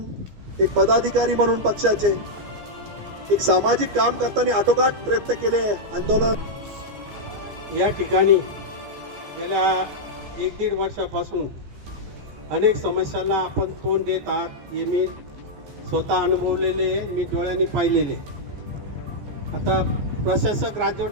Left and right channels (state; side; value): late; left; 14 ms